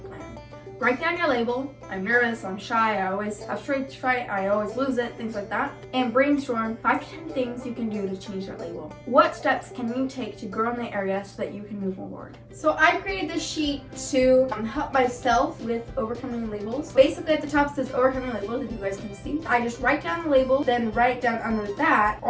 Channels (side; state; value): both; identical; correlation 1.00